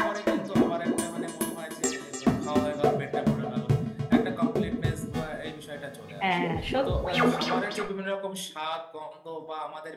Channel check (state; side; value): identical; both; correlation 1.00